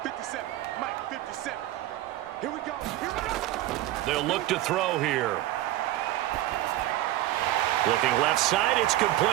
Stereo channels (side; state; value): left; quieter; 15.0 dB